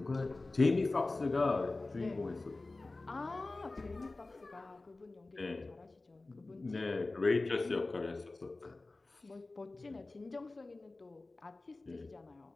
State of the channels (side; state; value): right; quieter; 3.2 dB